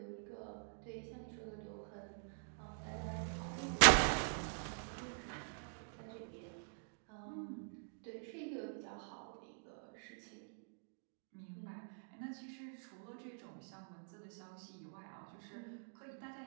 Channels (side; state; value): left; silent; digital silence